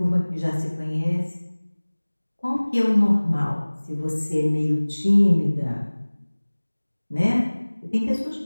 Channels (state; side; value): inverted; both; correlation -1.00